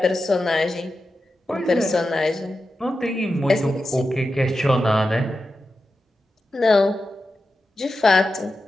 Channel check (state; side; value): normal; both; correlation 0.91